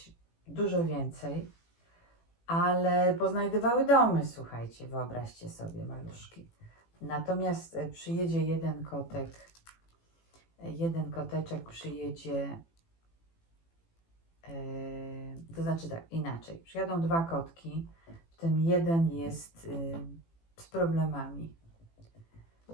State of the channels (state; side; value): late; right; 18 ms